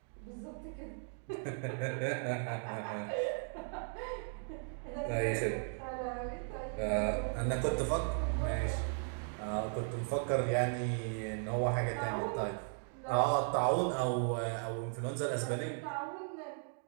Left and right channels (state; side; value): silent; left; 53 dB below the other